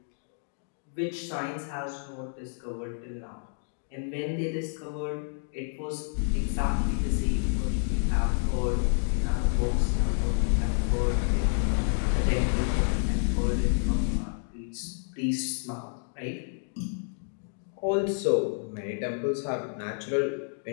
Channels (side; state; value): right; silent; 58 dB below the other